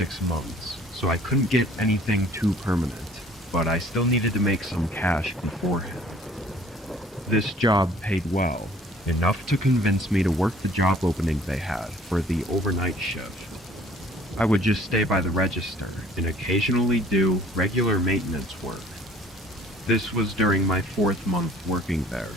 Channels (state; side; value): normal; both; correlation 0.54